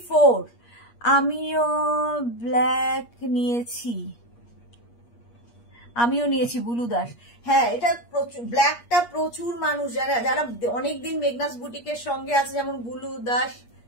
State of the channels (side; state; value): right; late; 8.4 ms